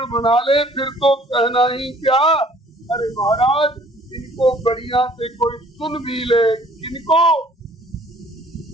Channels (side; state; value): both; normal; correlation 0.56